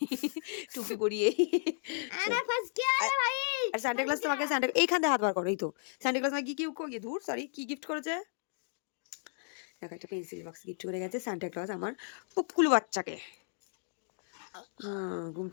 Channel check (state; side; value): silent; right; digital silence